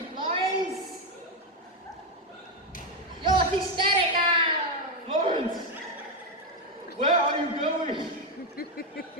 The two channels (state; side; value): normal; both; correlation 0.06